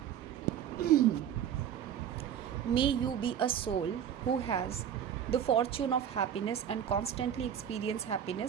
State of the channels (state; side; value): quieter; left; 9.3 dB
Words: May you be a soul who has the fortune of happiness and constantly experience